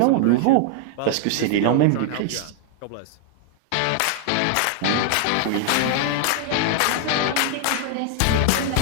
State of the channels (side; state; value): both; different; correlation 0.00